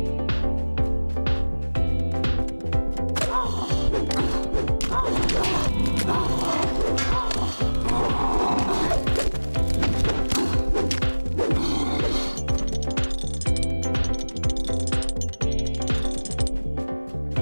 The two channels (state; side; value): inverted; both; correlation -1.00